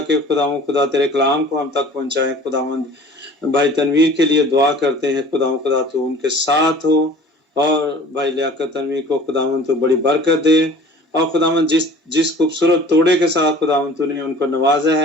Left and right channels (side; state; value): both; normal; correlation 0.46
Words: کہ خداوند خدا تیرے کلام کو ہم تک پہنچائیں، خداوند بھائی تنویر کے لیے دعا کرتے ہیں خداوند خدا تو ان کے ساتھ ہو، اور بھائی لیاقت تنویر کو خداوند تو بڑی برکت دے، اور خداوند جس خوبصورت توڑے کے ساتھ خداوند تو نے ان کو نوازا